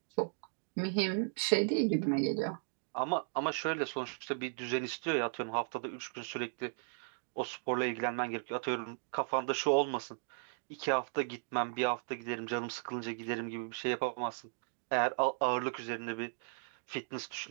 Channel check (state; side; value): silent; left; digital silence